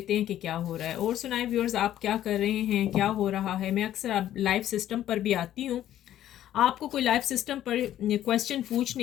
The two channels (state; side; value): quieter; right; 12.1 dB